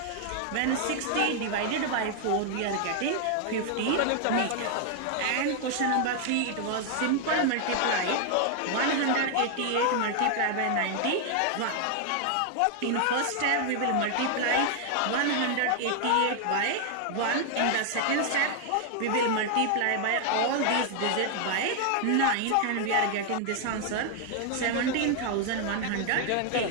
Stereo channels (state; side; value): different; both; correlation 0.00